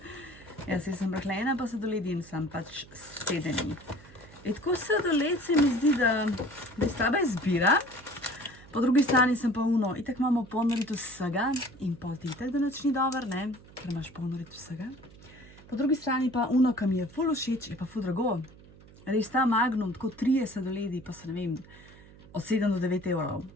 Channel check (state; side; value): noise; right; hum, 22 dB below the sound